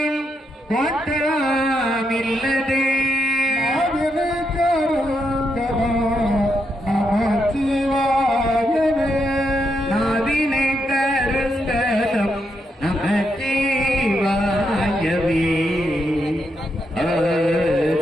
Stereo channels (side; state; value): both; normal; correlation 0.81